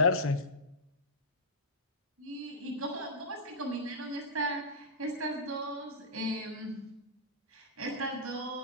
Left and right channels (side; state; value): both; normal; correlation -0.13